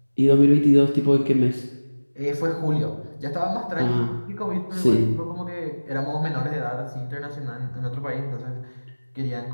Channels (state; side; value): inverted; both; correlation -1.00